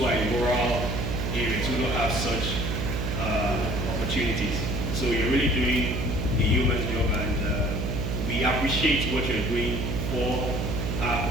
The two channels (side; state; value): right; noise; hum, 1 dB below the sound